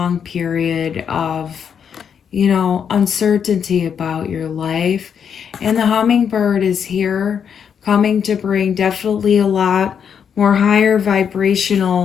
period of, uncertainty about your life. And the hummingbird is here, coming to bring definitely a lot more higher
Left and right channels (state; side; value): quieter; right; 7.5 dB